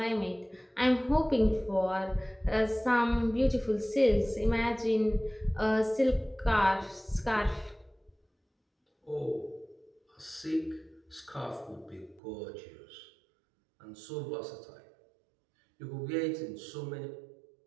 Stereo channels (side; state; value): left; drops out; at 12.2 s